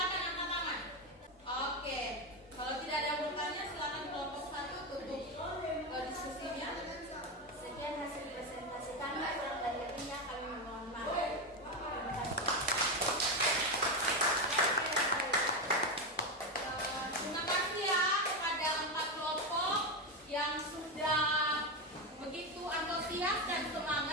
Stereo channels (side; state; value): both; normal; correlation 0.11